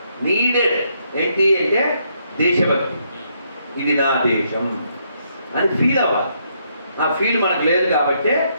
నీడెడ్ ఏంటి అంటే దేశభక్తి. ఇది నా దేశం అని ఫీల్ అవ్వాలి. ఆ ఫీల్ మనకు లేదు కాబట్టి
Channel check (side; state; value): both; inverted; correlation -0.74